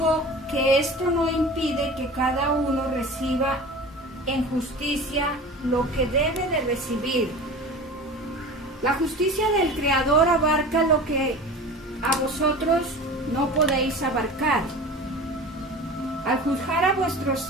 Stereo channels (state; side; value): normal; both; correlation 0.36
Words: que esto no impide que cada uno reciba en justicia lo que debe de recibir. La justicia del Creador abarca lo que a vosotros no podéis abarcar. Al juzgar a vuestros